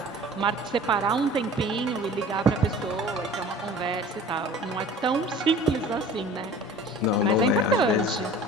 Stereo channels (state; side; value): normal; both; correlation 0.44